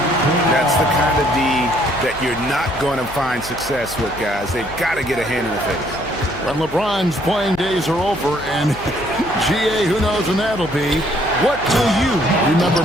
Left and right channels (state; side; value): noise; left; hum, 16 dB below the sound